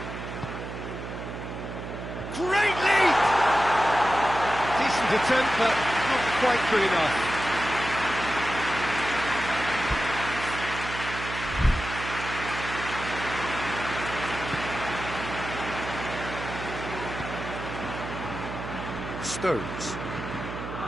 Great leap! Decent attempt, but not quite good enough.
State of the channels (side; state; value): right; noise; hum, 8 dB below the sound